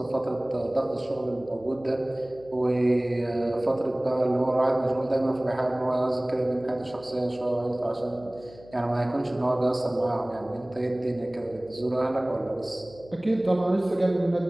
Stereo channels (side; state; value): left; noise; hum, 22 dB below the sound